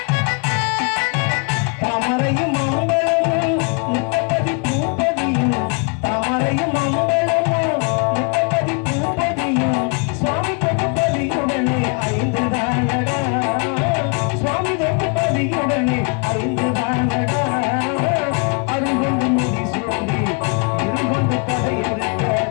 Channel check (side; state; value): right; quieter; 35.4 dB